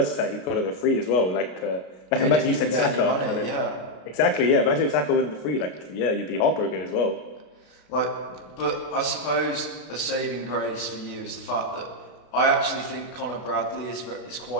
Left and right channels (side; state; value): right; late; 32 ms